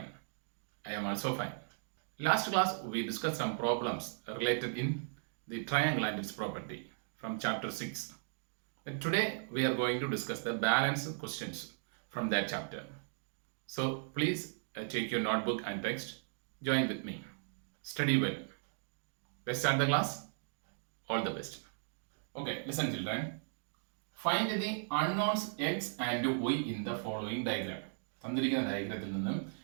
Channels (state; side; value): silent; left; digital silence